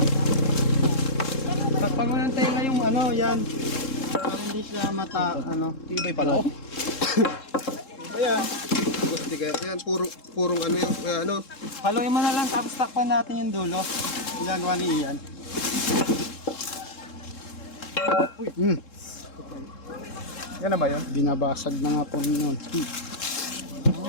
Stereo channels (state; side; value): late; right; 3.7 ms